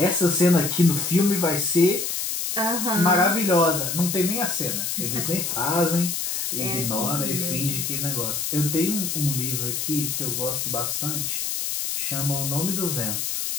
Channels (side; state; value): left; noise; hiss, 2 dB below the sound